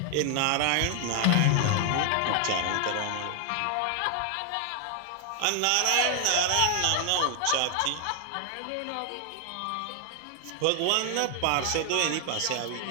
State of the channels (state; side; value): different; both; correlation 0.00